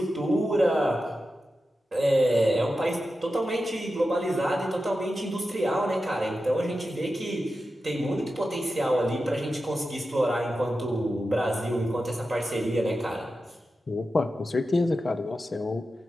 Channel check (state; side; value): normal; both; correlation 0.91